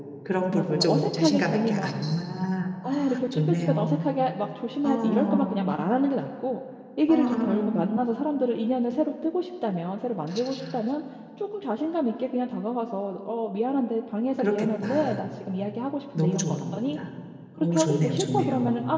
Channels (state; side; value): identical; both; correlation 1.00